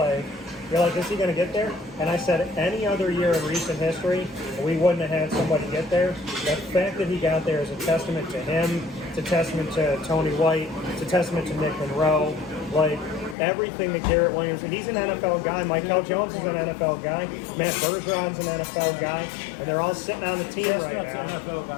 you're like, is he going to get there? And I said, any other year in recent history, we wouldn't have had somebody get there. The fact that he got there is a testament to him. It's a testament to Tony White. It's a testament to Nick Monroe. Like, everything that Garrett Williams, and he's an NFL guy. Michael Jones is an NFL guy. Matt Bergeron's an NFL guy, and they're all sitting on the team right now. That's an NFL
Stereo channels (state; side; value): drops out; right; at 13.4 s